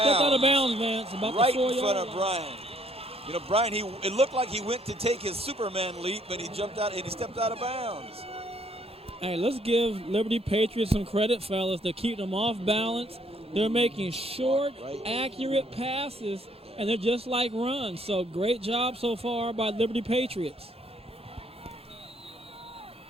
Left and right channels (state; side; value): normal; both; correlation 0.65